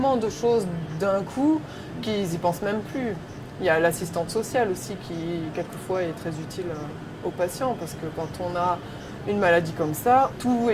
de choses d'un coup qu'ils n'y pensent même plus. Il y a l'assistante sociale aussi qui, quelquefois, est très utile aux patients parce que quand on a une maladie comme ça, tout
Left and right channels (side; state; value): both; identical; correlation 1.00